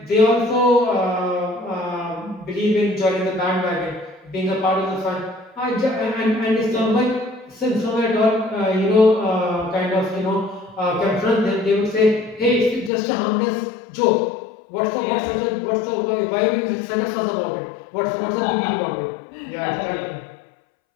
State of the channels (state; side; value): drops out; right; at 12.9 s